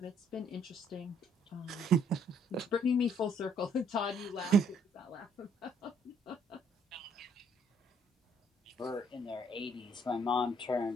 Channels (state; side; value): normal; both; correlation 0.65